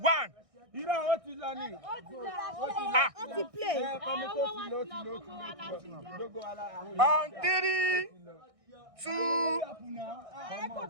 1. Irọ́ ó ti lọ ni. Ó ti play. On 3, 2.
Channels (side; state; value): left; late; 1.6 ms